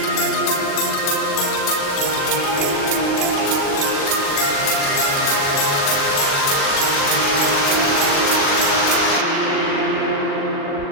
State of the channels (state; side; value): late; right; 40 ms